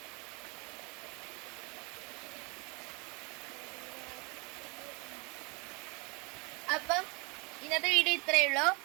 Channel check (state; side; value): quieter; left; 29.6 dB